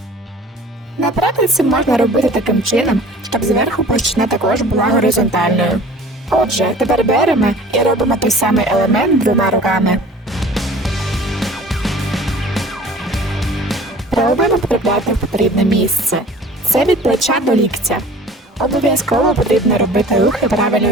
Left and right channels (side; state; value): both; normal; correlation 0.46